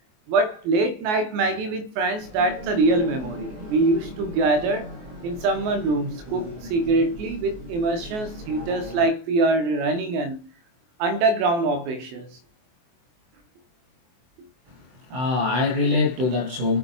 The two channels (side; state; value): left; late; 23 ms